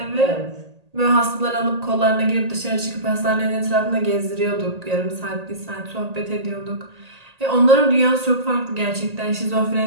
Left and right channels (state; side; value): late; left; 1.8 ms